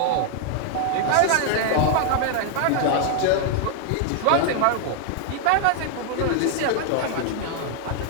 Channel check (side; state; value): both; different; correlation 0.00